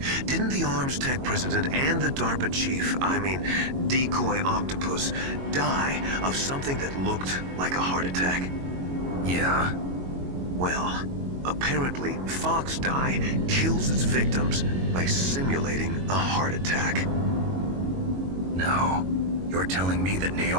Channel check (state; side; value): late; left; 22 ms